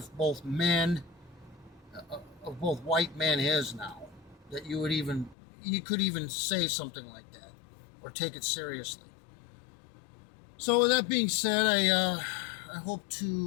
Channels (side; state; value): right; drops out; at 5.4 s